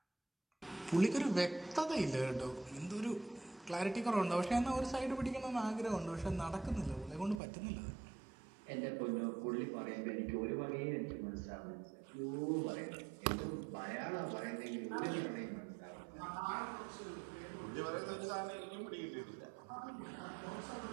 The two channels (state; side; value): drops out; left; at 7.4 s